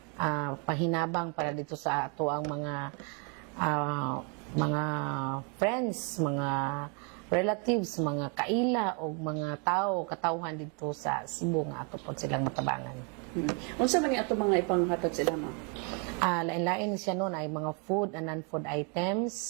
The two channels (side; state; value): left; quieter; 36.5 dB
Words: pahinabang para dito sa ato ang mga friends, mga relatives, mga kaila o mga katawhan dito sa Cebu nga ato po silang matabangan. Unsa man ni ato mga ipanghatag sila, Ma'am? Lain-lain siya noon ay mga food and non-food